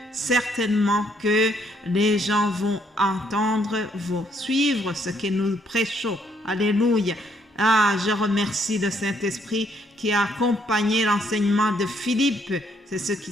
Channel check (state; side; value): normal; both; correlation 0.70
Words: certainement que les gens vont entendre, vont suivre ce que nous prêchons. Alléluia. Je remercie le Saint-Esprit qui a accompagné l'enseignement de Philippe. C'est ce qui